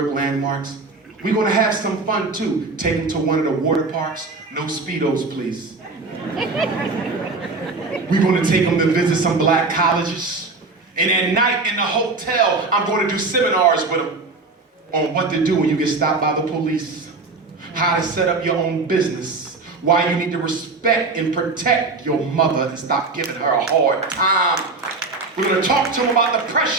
landmarks. We're going to have some fun too. Take them to one of the water parks. No Speedos, please. We're going to take them to visit some black colleges. And at night in the hotel, I'm going to do seminars with them on what to do when you get stopped by the police, how to set up your own business, why you need to respect and protect your mother and stop giving her a hard time. We're going to talk to them about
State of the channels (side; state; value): left; quieter; 3.7 dB